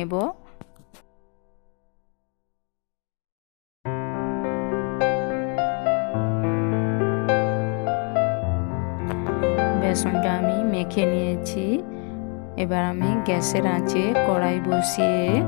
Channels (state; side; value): quieter; right; 37.0 dB